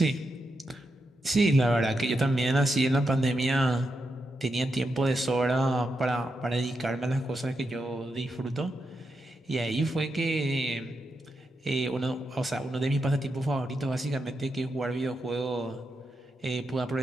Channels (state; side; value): normal; both; correlation 0.85